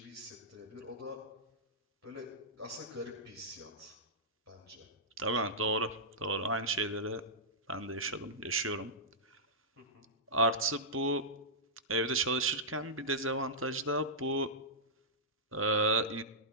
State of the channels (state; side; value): normal; both; correlation -0.12